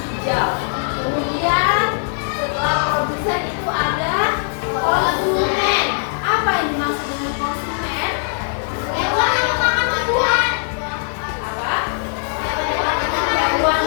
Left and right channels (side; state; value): right; silent; digital silence